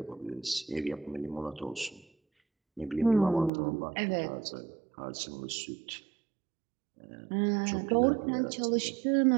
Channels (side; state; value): left; drops out; at 3.5 s